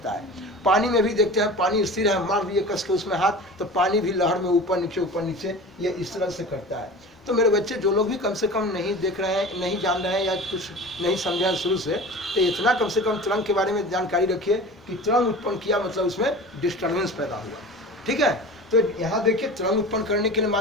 है। पानी में भी देखते हैं, पानी स्थिर है, मार दिए कस के उसमें हाथ, तो पानी भी लहर में ऊपर नीचे ये इस तरह से करता है। तो मेरे बच्चे जो लोग भी कम से कम नहीं देख रहे हैं, नहीं जान रहे हैं या कुछ नहीं समझे हैं शुरू से, तो इतना कम से कम तरंग के बारे में जानकारी रखिए कि तरंग उत्पन्न किया मतलब उसमें डिस्टर्बेंस पैदा हुआ। ठीक है, तो यहाँ देखिए तरंग उत्पन्न करने के लिए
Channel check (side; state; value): both; normal; correlation 0.36